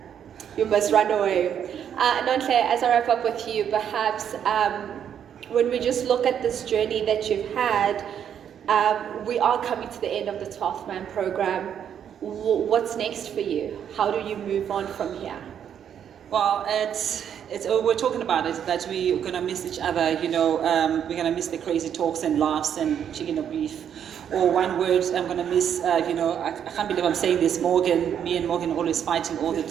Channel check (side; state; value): left; quieter; 8.8 dB